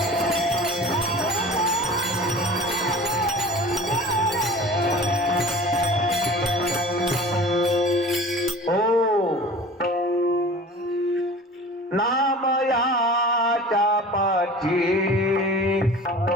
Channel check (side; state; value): both; normal; correlation 0.40